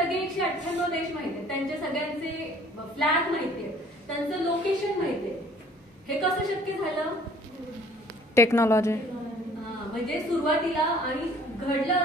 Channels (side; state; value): both; normal; correlation 0.55